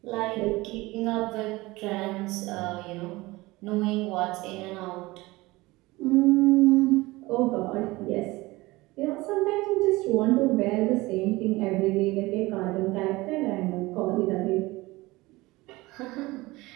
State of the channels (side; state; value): left; quieter; 20.7 dB